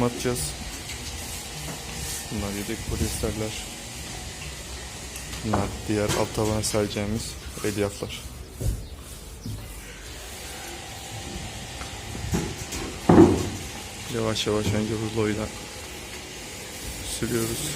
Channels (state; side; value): identical; both; correlation 1.00